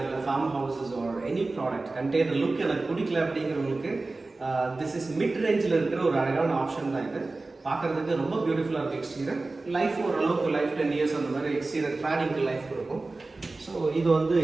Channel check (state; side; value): quieter; left; 3.4 dB